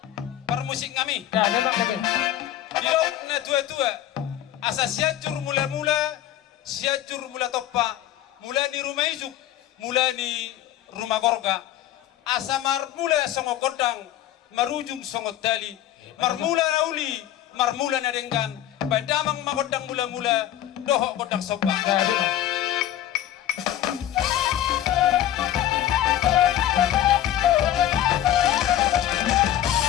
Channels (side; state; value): right; quieter; 12.3 dB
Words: permusik ngami dilok na tua-tua asa siajur mula-mula siajur mula toppa mula ni rumah ijuk mula ni rumah gorga asa marmula songo kodang marujung songo dali marmula nauli marmula na denggan badamang makodang mula-mula doho kodang sopa